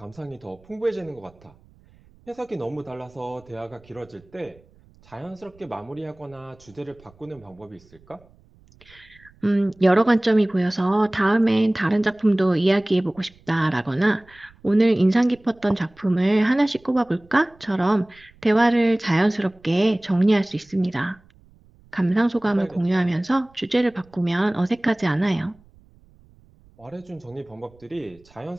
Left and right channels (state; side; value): noise; right; rumble, 29 dB below the sound